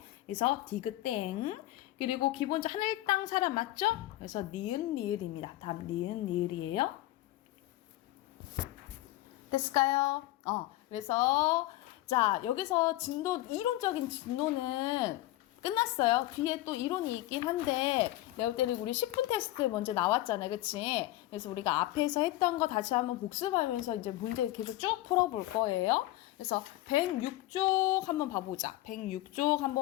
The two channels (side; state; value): right; quieter; 16.4 dB